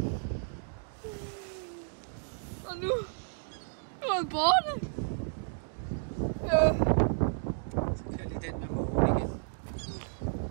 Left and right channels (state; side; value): silent; left; digital silence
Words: Og nu er han borte. Så kører lige den med mågen igen.